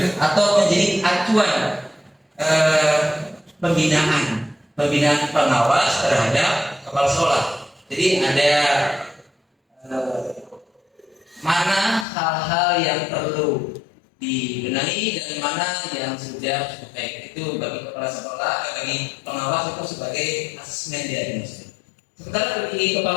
atau menjadi acuan pembinaan pengawas terhadap kepala sekolah. Jadi ada mana hal-hal yang perlu dibenahi dan mana yang sudah cukup baik. Itu bagi kepala sekolah, bagi pengawas itu sebagai asesmen diagnostik. Sementara bagi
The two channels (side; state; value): right; drops out; at 12.1 s